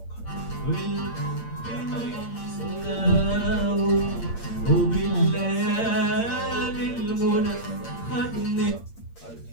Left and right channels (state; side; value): late; right; 8.7 ms